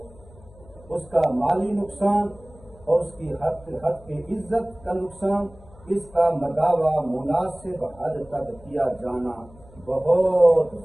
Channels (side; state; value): left; noise; hum, 23 dB below the sound